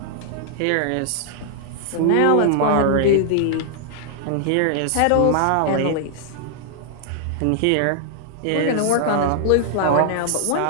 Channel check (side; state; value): both; different; correlation -0.01